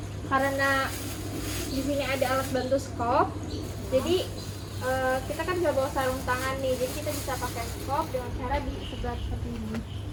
Karena di sini ada alat bantu skop. Jadi kita kan bisa bawa sarung tangan nih, jadi kita bisa pakai skop dengan cara disebar seperti ini.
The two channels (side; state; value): both; identical; correlation 1.00